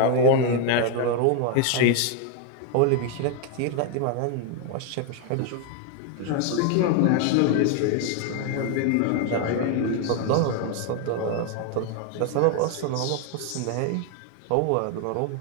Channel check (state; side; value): different; both; correlation 0.01